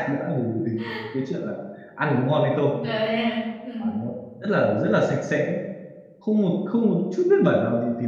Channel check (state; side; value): identical; both; correlation 1.00